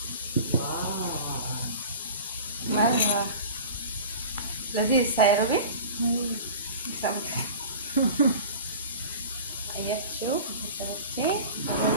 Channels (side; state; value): both; inverted; correlation -0.37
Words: مرة لذيذ سايروبي اياك شوف